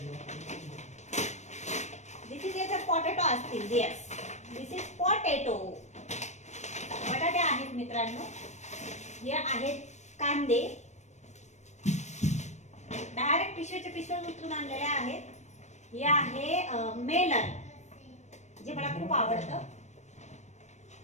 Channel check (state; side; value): late; right; 0.34 ms